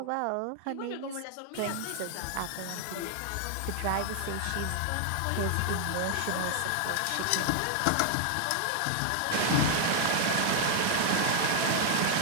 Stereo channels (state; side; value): different; both; correlation 0.00